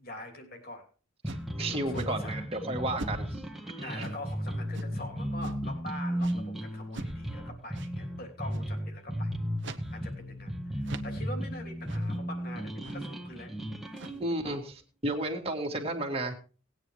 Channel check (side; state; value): both; normal; correlation 0.64